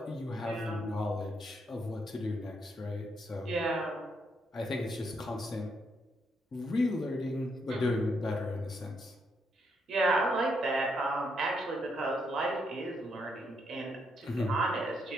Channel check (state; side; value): normal; both; correlation 0.77